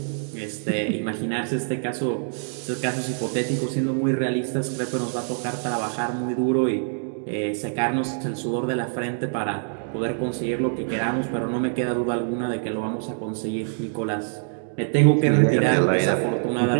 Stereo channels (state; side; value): silent; left; digital silence